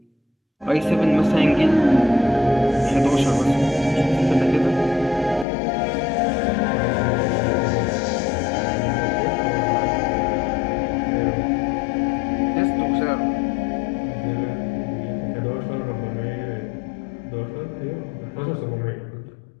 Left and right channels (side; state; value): right; drops out; at 5.5 s